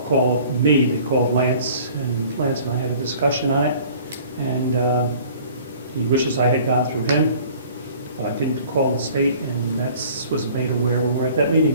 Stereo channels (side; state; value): both; inverted; correlation -0.50